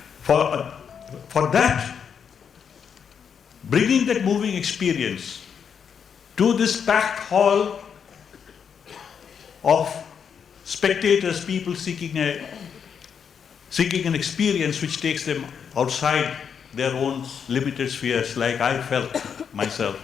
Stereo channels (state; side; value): quieter; right; 7.2 dB